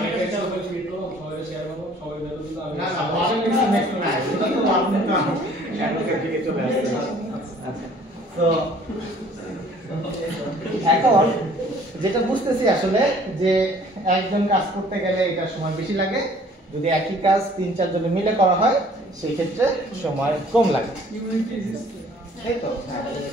একটা উপর ক্লিক করব সবাই শেয়ার করব সবাই বের করে দিলাম না না ওয়ান মিনিট নেক্সট না এটা তো আপনি তো অ্যাডভোকেট থেকে চলে আসছে আচ্ছা তো এখন যেটা বুঝতেছি আসলে যে একজন কাজ করতে গেলে এটা সময় বেশি লাগে যদি একই কাজ 3-4 জনে মিলে করা হয় সেই ক্ষেত্রে সময় কম লাগে তাই তো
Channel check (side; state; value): both; normal; correlation 0.55